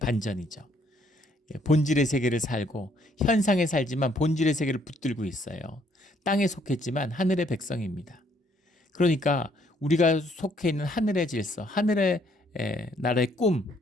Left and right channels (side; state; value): both; normal; correlation 0.67